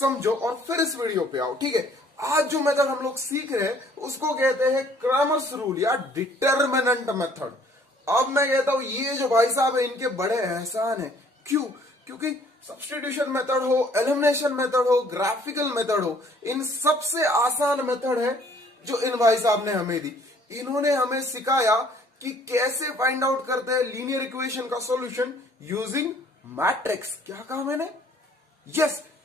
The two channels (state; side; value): normal; both; correlation 0.58